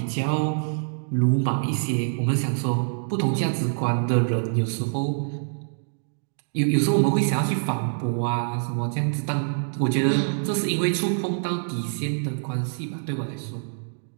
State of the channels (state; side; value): silent; left; digital silence